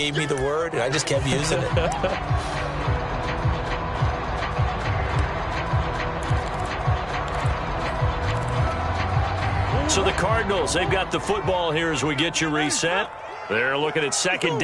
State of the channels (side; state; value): both; identical; correlation 1.00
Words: me the word, and I just kept using it. So the Cardinals, they've got the football here as we get you reset. They're looking at second